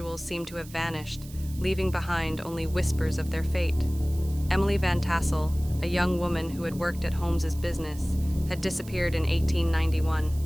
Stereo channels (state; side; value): noise; right; hiss, 19 dB below the sound